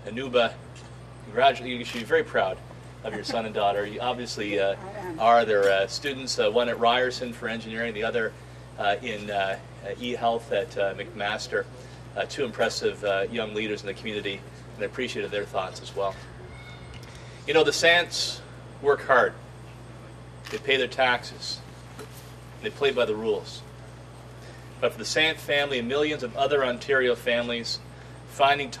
Anuba, you should be very proud of your son and daughter. You obviously are their students, one at Ryerson for engineering, the other in e-health at McMaster. Two impressive young leaders in the community, and I appreciated their thoughts as well. You know, the Sants work hard. They pay their taxes. They play by the rules. But for the Sant family and millions of other Ontario families, finding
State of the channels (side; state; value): both; identical; correlation 1.00